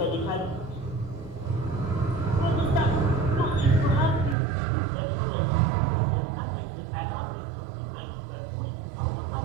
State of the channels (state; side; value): drops out; left; at 4.4 s